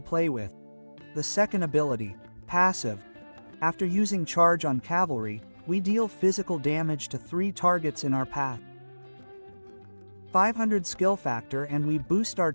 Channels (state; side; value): inverted; both; correlation -1.00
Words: play with. The second ability, passive. After using charge on Cavalry, we deal physical damage to 3 targets in our path. 500 skill factor and we boost our